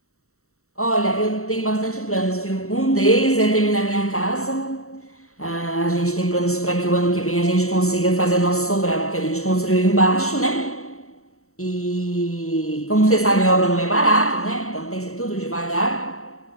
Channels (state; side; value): late; right; 0.64 ms